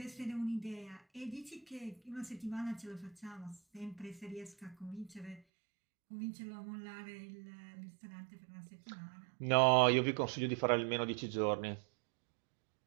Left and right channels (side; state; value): left; drops out; at 5.4 s